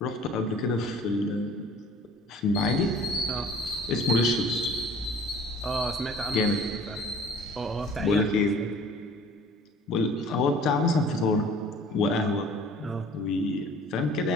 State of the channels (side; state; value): both; normal; correlation 0.49